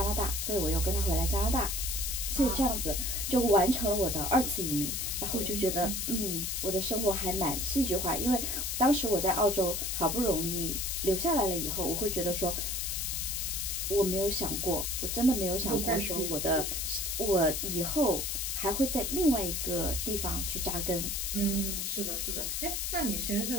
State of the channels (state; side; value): noise; left; hiss, 1 dB below the sound